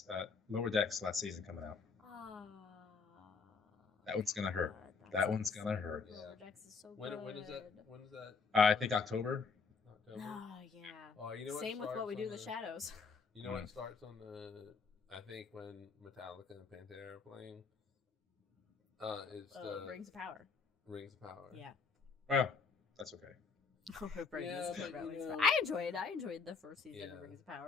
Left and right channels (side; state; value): right; quieter; 5.1 dB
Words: Lower Decks last season coming out. That one's gonna hurt. That one's gonna hurt. Lower Decks is so When good. is that? When is that? I think October. Oh yeah. Oh, you know what? Same with What We Do in the Shadows. You know what starts on the? I think when Metallica and Pantera are playing. It's the Rings of Power. Rings of Power. Yeah. Well, that's okay. I enjoyed the first season of Rings of